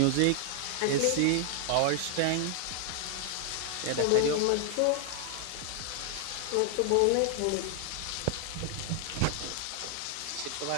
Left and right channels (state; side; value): different; both; correlation 0.00